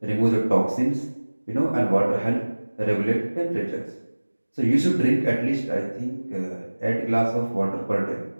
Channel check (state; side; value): inverted; both; correlation -1.00